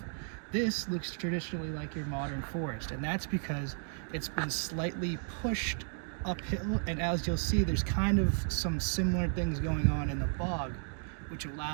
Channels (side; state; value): left; silent; 55 dB below the other